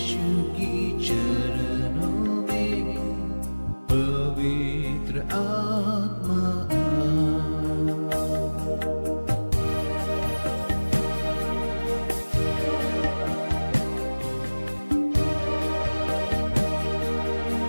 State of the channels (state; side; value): inverted; both; correlation -1.00